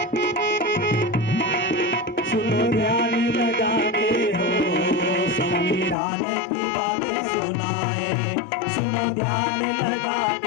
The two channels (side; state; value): right; drops out; at 6.0 s